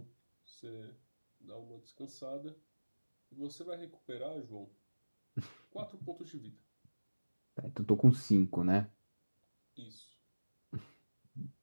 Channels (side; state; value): both; inverted; correlation -1.00